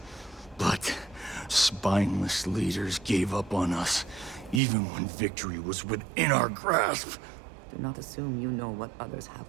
but spineless leaders gave up on us, even when victory was within our grasp. Do not assume you know what others have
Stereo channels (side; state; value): left; drops out; at 4.6 s